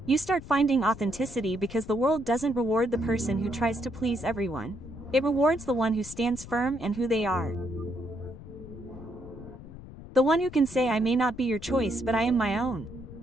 you start finding authenticity, because the world doesn't reward the person who tries to please everyone. It rewards the one who stands firm in who they are. The one who can say, "I may not be your choice, but I am my own."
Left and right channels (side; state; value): left; noise; rumble, 15 dB below the sound